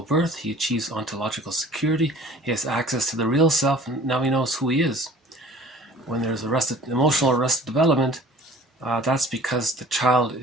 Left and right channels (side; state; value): both; normal; correlation 0.48